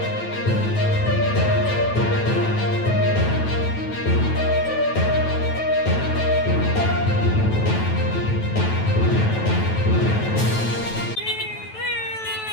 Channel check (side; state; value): right; late; 9.1 ms